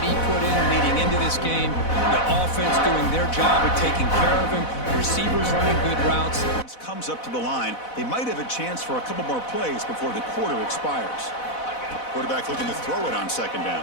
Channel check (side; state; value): right; late; 4.0 ms